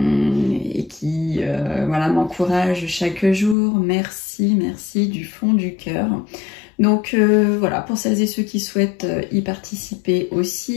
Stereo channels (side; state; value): right; drops out; at 3.6 s